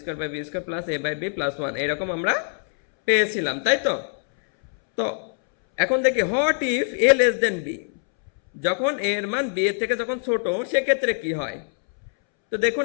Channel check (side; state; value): right; silent; 63 dB below the other